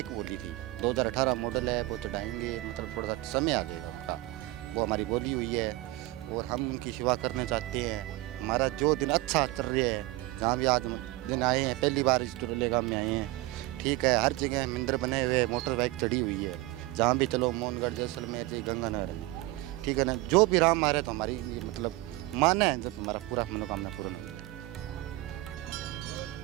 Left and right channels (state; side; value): quieter; left; 19.4 dB